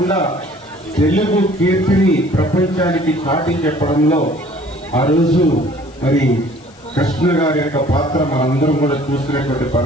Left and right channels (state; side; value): noise; left; hiss, 27 dB below the sound